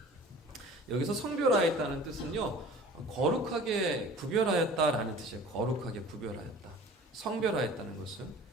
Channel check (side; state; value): both; normal; correlation 0.44